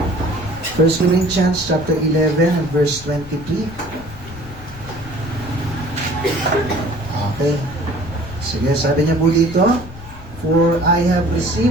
1 Corinthians chapter 11 and verse 23. Okay. Sige, sabi niya po dito, "For I have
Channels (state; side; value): noise; left; rumble, 16 dB below the sound